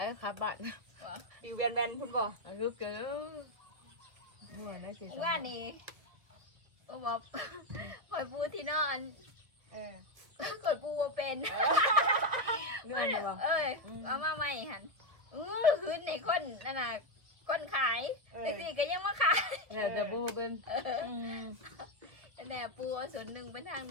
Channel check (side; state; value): left; late; 1.6 ms